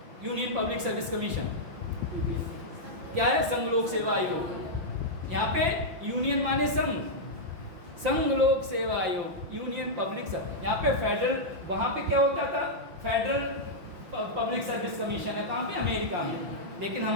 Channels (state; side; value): late; left; 5.8 ms